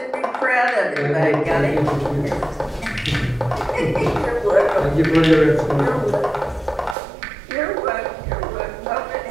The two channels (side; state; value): left; drops out; at 7.0 s